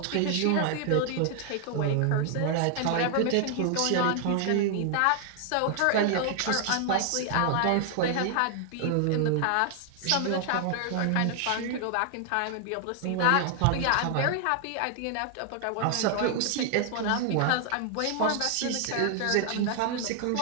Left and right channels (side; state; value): both; different; correlation 0.00